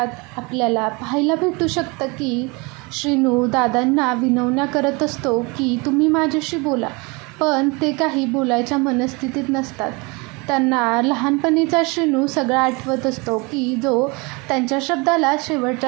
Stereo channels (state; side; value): quieter; left; 27.8 dB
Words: आपल्याला पाहायला भेटू शकतं की श्रीनू दादांना विनवण्या करत असतो की तुम्ही माझ्याशी बोला, पण ते काही बोलायच्या मनस्थितीत नसतात. त्यांना लहानपणीचा श्रीनू सगळा आठवत असतो की जो त्यांच्या शब्दाला